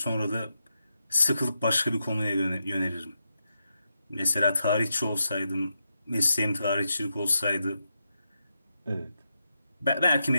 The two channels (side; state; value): both; inverted; correlation -0.86